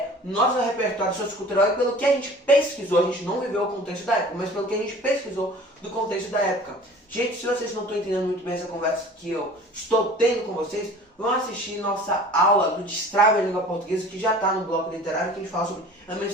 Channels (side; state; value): both; normal; correlation 0.45